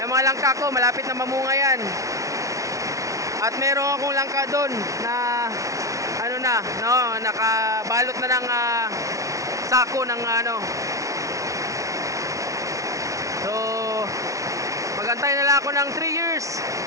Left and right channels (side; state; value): left; late; 0.16 ms